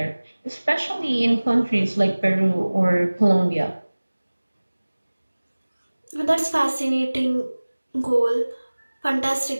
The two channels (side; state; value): both; inverted; correlation -1.00